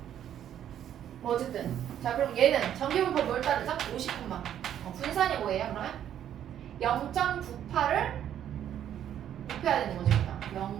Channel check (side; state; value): left; quieter; 10.3 dB